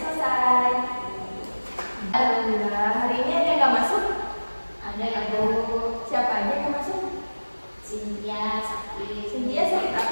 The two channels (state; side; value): inverted; both; correlation -1.00